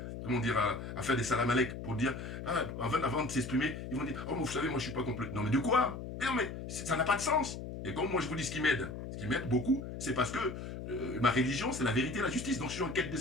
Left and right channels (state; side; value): noise; left; hum, 8 dB below the sound